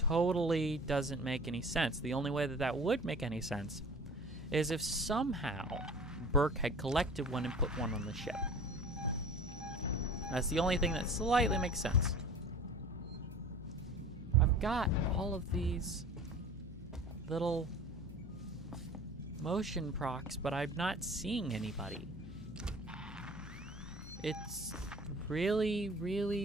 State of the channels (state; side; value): normal; both; correlation 0.42